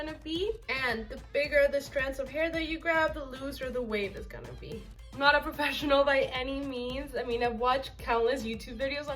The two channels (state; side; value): identical; both; correlation 1.00